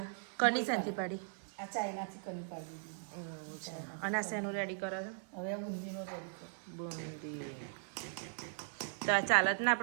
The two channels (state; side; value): silent; left; 52 dB below the other